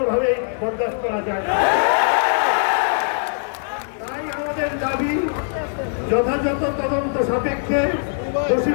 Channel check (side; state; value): right; silent; 65 dB below the other